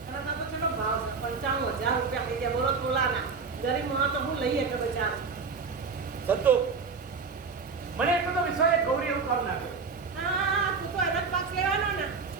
અને તો ચલો ભાવ છે 95,000 રૂપિયા થઈ ગયા. બોલો તોલાના ગરીબ માં તો હું લઈએ કે બચારો. સંતો મને એટલો તો વિશ્વાસ ગૌરી એવું કામ ના કરે. હા, તું તો એનો જ પક્ષ લેવાનો ને.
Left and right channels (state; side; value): quieter; left; 4.9 dB